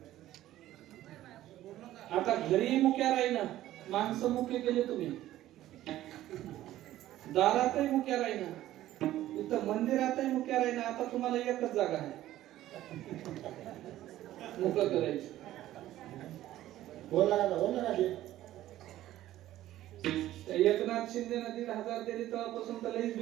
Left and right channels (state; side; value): quieter; left; 14.2 dB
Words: आता घरी मुक्या राहीना माणसं मुके केले तुम्ही दारातही मुक्या राहीना इथं मंदिरातही मुक्या राहीना आता तुम्हाला एकच जागा आहे मुक करायची बोला एकनाथ शिंदे 1,500 दिली तेव्हापासून तर लईच